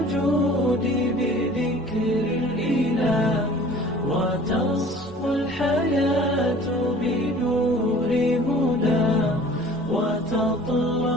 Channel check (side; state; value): both; normal; correlation 0.47